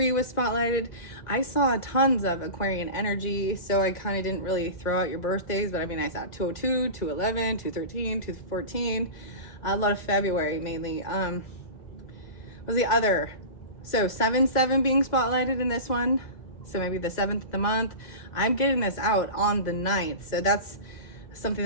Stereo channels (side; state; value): right; late; 2.0 ms